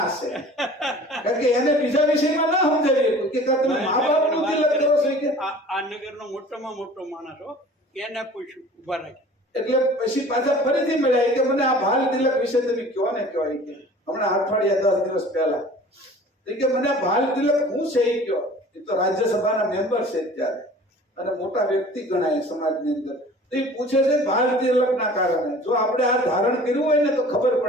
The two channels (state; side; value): normal; both; correlation 0.45